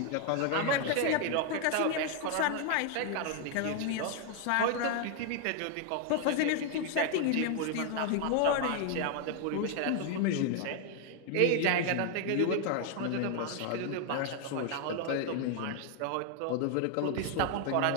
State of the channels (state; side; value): different; both; correlation 0.00